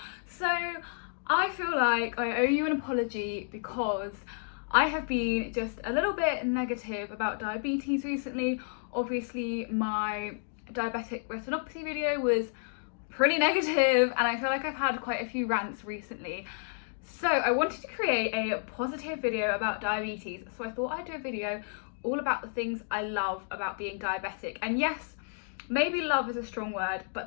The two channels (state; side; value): silent; right; digital silence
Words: So I feel like I owe you an apology because I have been just a little bit negative about diabetes recently. Obviously my diabetic retinopathy video was pretty negative and I feel like I've had quite a few rants recently. So I wanted to create a positive video about diabetes, so I thought I'd do a video all about the things I love about being diabetic. And yes, maybe love is a strong word, but